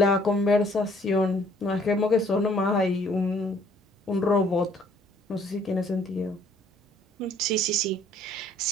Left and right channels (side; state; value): both; normal; correlation 0.60